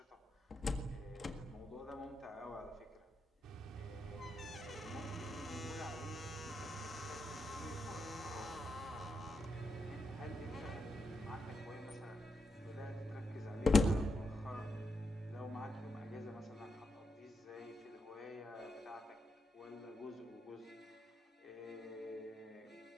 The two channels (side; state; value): both; normal; correlation 0.84